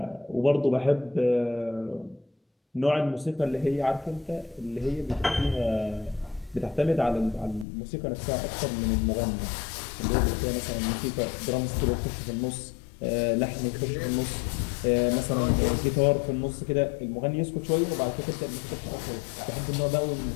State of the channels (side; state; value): right; drops out; at 7.7 s